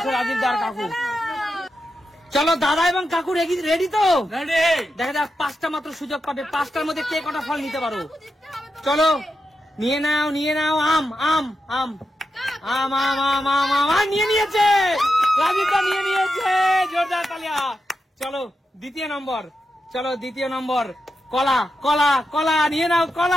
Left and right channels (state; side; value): normal; both; correlation 0.88